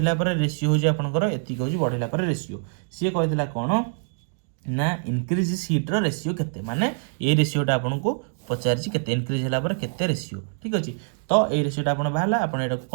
रेशियो हूँ आपंकर एति हूँ बढ़ला रेशियो सी कही कौन ना इनक्रीज सीट्र रेशियो केते माने ये रेशियोटा आपको पचारि केते इनक्रीज होला पर केते रेशियो ठीक अच्छे तो ये रेसीटा आप बाहर आपड़ यहाँ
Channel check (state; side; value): silent; left; digital silence